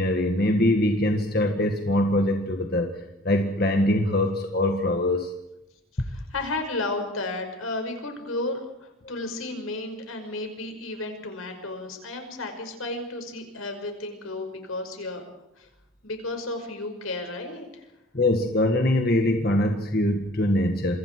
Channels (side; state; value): both; normal; correlation 0.47